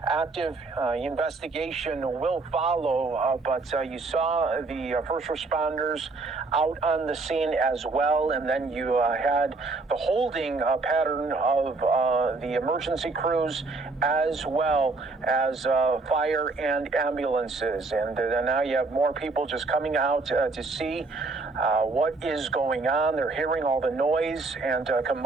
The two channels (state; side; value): quieter; left; 3.7 dB